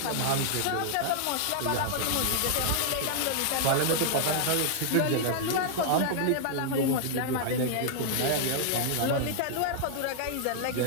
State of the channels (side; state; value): both; different; correlation -0.01